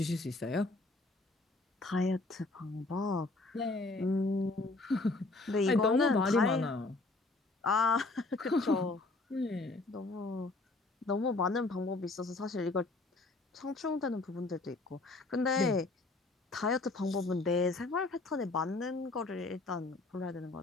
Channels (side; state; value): right; quieter; 3.2 dB